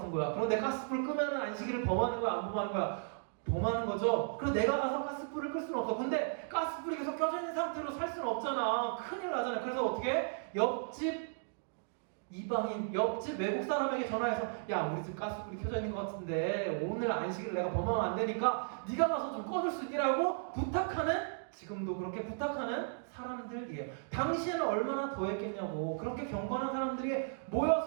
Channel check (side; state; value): left; silent; digital silence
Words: 거야. 그런데 가스불 끄면은 안식일을 범하는 거야, 안 범하는 거야? 더 많은 거죠. 그리고 내가 가서 가스불을 끌 수는 없어. 근데 가스불이 계속 켜져 있는 상태로 살 수는 없잖아. 큰일 나잖아. 그래서 어떻게? 옆집 이방인, 옆집 외국 사람에게 전화해서 야, 우리 집 가스불이 켜져 있는 것 같은데 오늘 안식일 내가 범하면 안 되니까 네가 가서 좀 꺼줄 수 있기라고 부탁하는, 지금도 그렇게 부탁하는 사람들이에요. 당시에는 얼마나 더했겠냐고. 그렇게 경건한 사람들이